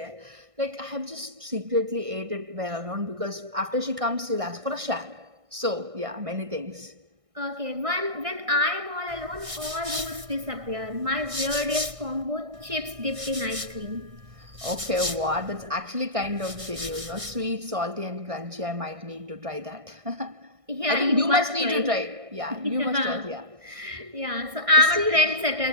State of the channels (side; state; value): left; late; 1.6 ms